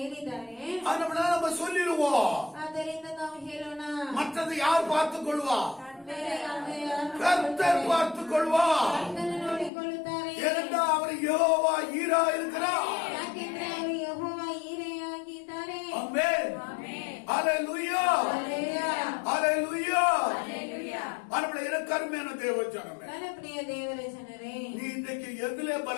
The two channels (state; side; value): drops out; right; at 9.7 s